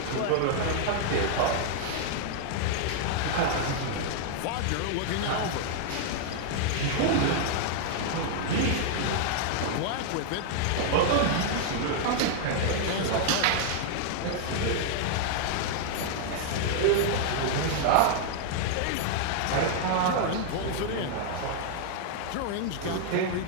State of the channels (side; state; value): both; different; correlation -0.01